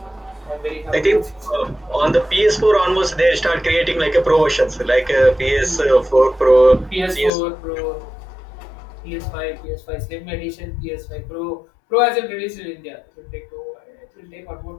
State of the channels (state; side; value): drops out; right; at 7.3 s